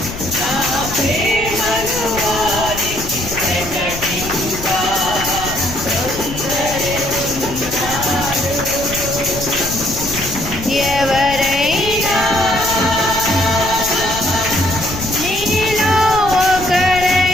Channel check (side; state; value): left; noise; rumble, 10 dB below the sound